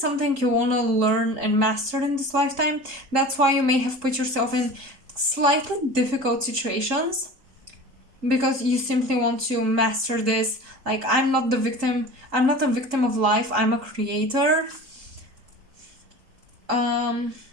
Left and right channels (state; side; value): late; left; 3.8 ms